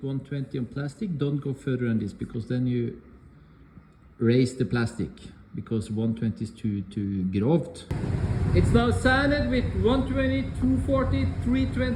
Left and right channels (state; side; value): identical; both; correlation 1.00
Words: 120 on plastic, don't go further than this because then you raise the plastic because 120 is too grovt. It's now sanded with 120, 240,